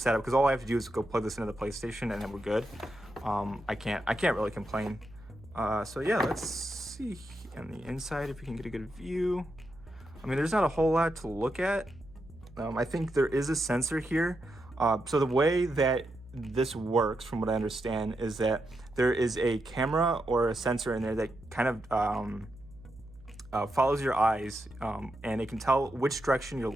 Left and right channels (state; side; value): noise; right; hum, 22 dB below the sound